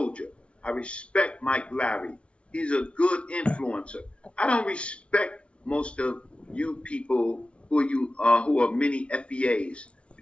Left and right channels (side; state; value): right; late; 0.060 ms